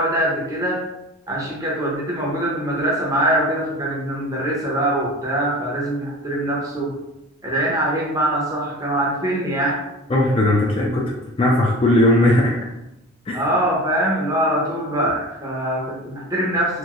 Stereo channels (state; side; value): normal; both; correlation 0.37